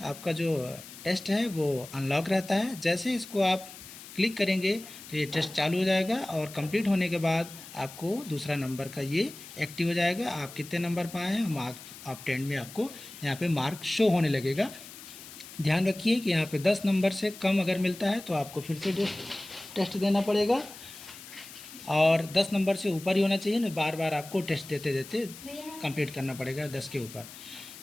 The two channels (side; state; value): left; noise; hiss, 15 dB below the sound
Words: आपका जो टेस्ट है वो अनलॉक रहता है। जैसे इसको आप क्लिक करेंगे तो ये टेस्ट चालू हो जाएगा और कंप्लीट होने के बाद आपको दूसरा नंबर का ये एक्टिव हो जाएगा। आप कितने नंबर पाए हैं मार्क ऑब्टेन्ड में आपको यहाँ पे मार्क शो होने लगेगा। ध्यान रखिए कि यहाँ पे 10 नंबर से कम अगर मिलता है तो आपको फिर से टेस्ट देना पड़ेगा और 10 नंबर से ऊपर ही होना चाहिए ना, बार बार आपको टेस्ट देते देते कंप्लीट करना पड़ेगा 10 के ऊपर।